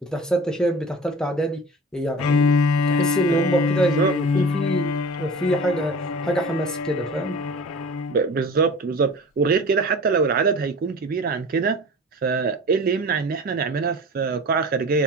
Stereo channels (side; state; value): both; normal; correlation 0.39